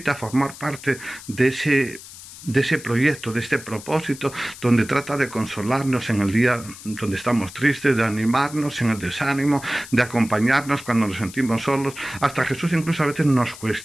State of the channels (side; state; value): left; noise; hiss, 16 dB below the sound